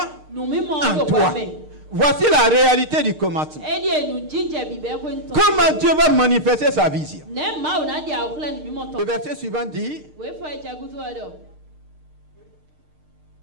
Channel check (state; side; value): late; left; 6.5 ms